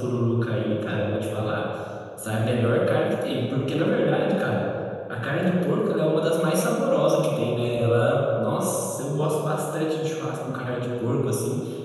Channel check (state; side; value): identical; both; correlation 1.00